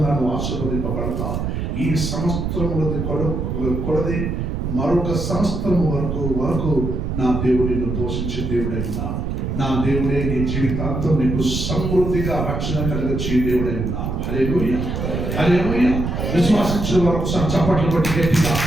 నువ్వు ఆశీర్వదింపబడతావు. ఈ సంవత్సరములది కొలది మరొక సంవత్సరం వరకు నా దేవుడు నిన్ను పోషించే దేవుడై ఉన్నాను. నా దేవుడే నీ జీవితాంతం నీకు సమృద్ధిగా రక్షణ కలిగించే దేవుడై ఉన్నాను. హల్లెలూయా. హల్లెలూయా. విశ్వాసించిన వారు ఒకసారి చప్పట్లు కొట్టి గట్టిగా.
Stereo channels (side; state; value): right; noise; rumble, 2 dB below the sound